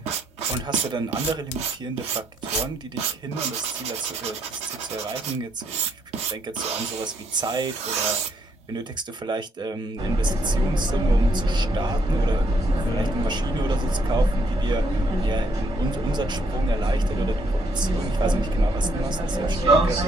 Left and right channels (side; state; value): both; normal; correlation 0.72